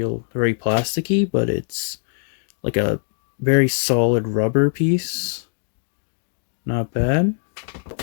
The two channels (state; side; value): silent; right; 64 dB below the other